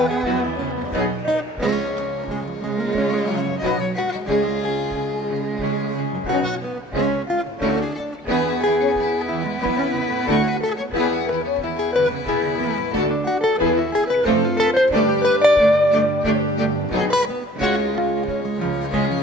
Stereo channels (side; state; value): both; normal; correlation 0.54